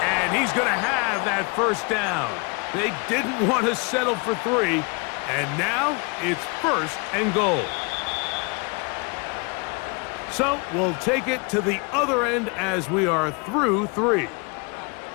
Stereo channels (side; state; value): right; quieter; 31.3 dB